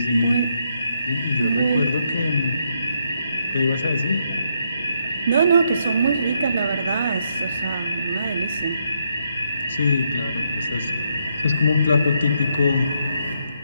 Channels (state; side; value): inverted; both; correlation -0.77